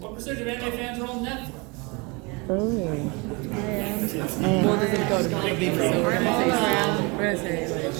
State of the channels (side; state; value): left; quieter; 28.2 dB